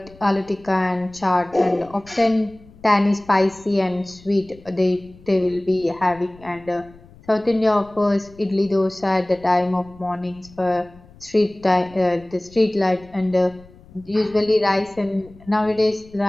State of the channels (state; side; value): noise; left; rumble, 24 dB below the sound